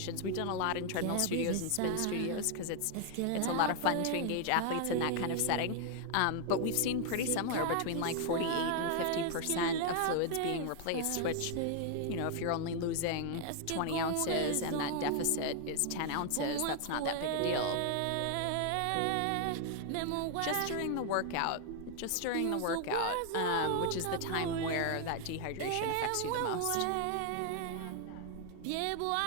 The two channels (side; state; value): both; different; correlation 0.00